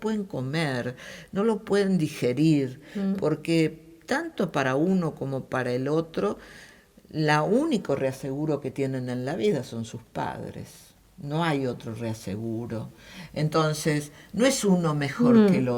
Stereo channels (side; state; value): both; identical; correlation 1.00